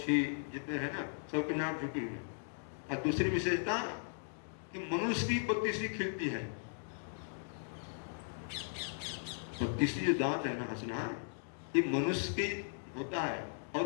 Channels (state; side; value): silent; right; digital silence